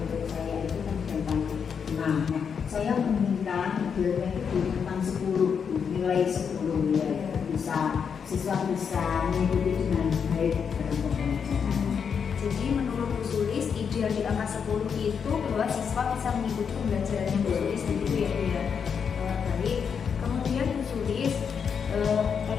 saya itu kan tentang 6. Nah, saya meminta idealnya itu di rentang 10, nilai 10 ya, bisa siswa bisa mengikuti dengan baik dalam pembelajaran. Jadi menurut Bu Sulis ideal di angka 10 itu bahwa siswa bisa mengikuti pembelajarannya Bu Sulis begitu ya Bu ya. Baik. Kemudian Bu Sulis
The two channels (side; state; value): right; quieter; 6.7 dB